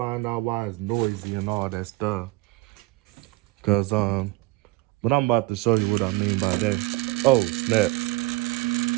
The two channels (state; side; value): quieter; left; 20.3 dB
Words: out why it's noisy and all that stuff. But I'm about to show you what I mean by that. Oh, snap.